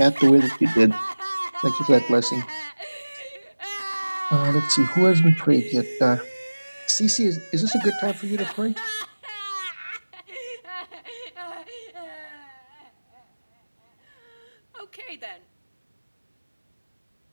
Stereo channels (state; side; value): inverted; both; correlation -1.00